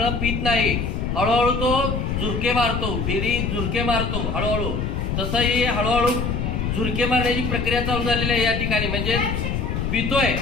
पित नाही, हळूहळू तो झुरके मारतो, बिडी झुरके मारतो हळूहळू, तसंही हळूहळू झुरके मारण्याची प्रक्रिया चालू झालेली आहे या ठिकाणी, म्हणजे पितोय।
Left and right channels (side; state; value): left; noise; rumble, 1 dB below the sound